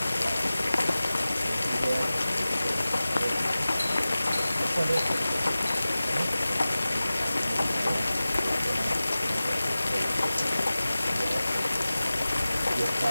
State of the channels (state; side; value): inverted; both; correlation -0.97